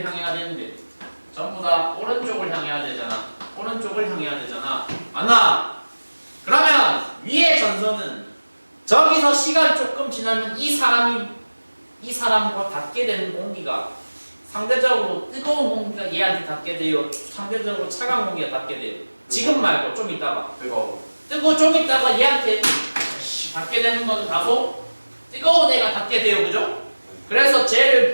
향해야 되는데 전부 다 오른쪽을 향해야 되잖아. 오른쪽을 향해야 되잖아. 맞나? 그러면 위의 전선은 저기서 시간 조금 지나면 이 사람과 닿게 되는 공기가 상대적으로 뜨거운 공기가 얘한테 닿게 돼요. 상대적으로 차가운 공기가 닿게 돼요. 지금 말고 좀 있다가 뜨거워 좀 있다가 얘한테 닿게 되는 것은 다소 뜨거운 애가 닿게 돼요. 그죠? 그래서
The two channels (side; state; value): both; inverted; correlation -1.00